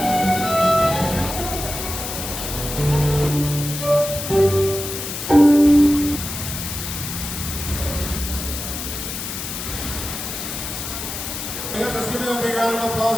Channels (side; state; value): left; noise; hiss, 6 dB below the sound